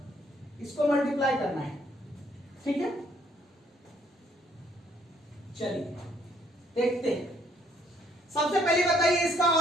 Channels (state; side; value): normal; both; correlation 0.66